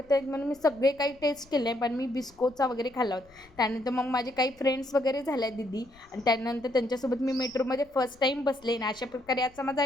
आहेत म्हणून मी सगळे काही टेस्ट केले, पण मी बिस्कोचा वगैरे खाल्ला होता. त्यानंतर मग माझे काही फ्रेंड्स वगैरे झाल्या दीदी, आणि त्यानंतर त्यांच्यासोबत मी मेट्रोमध्ये फर्स्ट टाईम बसले. आणि अशा प्रकारे आजचा माझा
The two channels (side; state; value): left; noise; rumble, 27 dB below the sound